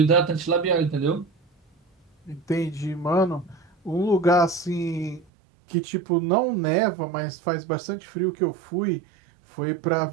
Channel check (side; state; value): left; drops out; at 5.2 s